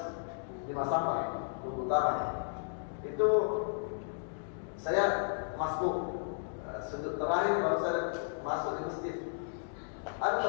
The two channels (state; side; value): silent; right; digital silence